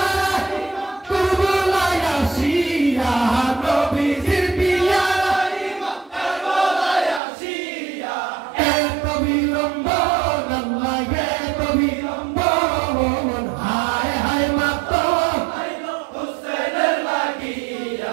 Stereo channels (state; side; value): drops out; left; at 7.2 s